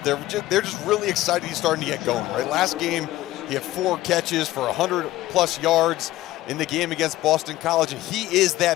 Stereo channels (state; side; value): quieter; right; 16.1 dB